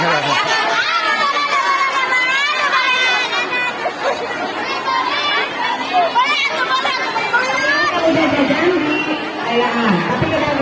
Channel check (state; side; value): identical; both; correlation 1.00